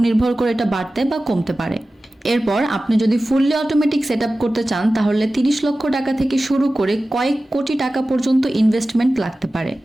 নির্ভর করে এটা বাড়তে বা কমতে পারে। এরপর আপনি যদি ফুললি অটোমেটিক সেট আপ করতে চান, তাহলে 30 লক্ষ টাকা থেকে শুরু করে কয়েক কোটি টাকা পর্যন্ত ইনভেস্টমেন্ট লাগতে পারে।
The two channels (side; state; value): both; normal; correlation 0.96